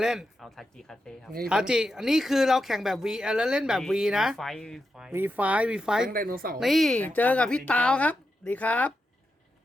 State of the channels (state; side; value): normal; both; correlation 0.87